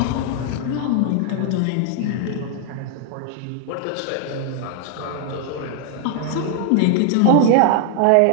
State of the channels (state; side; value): different; both; correlation 0.00